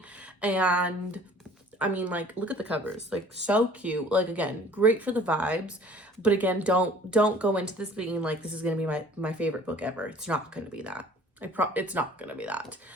And, I mean, like, look at the covers. Like, so cute. Like, again, great for the vibes. But, again, don't go into this being, like, this is going to be my favorite book ever. It's not going to be that. It's not going to be that.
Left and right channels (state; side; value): normal; both; correlation 0.51